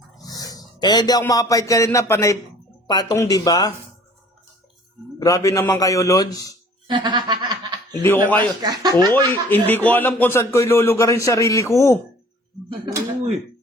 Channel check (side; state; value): both; normal; correlation 0.51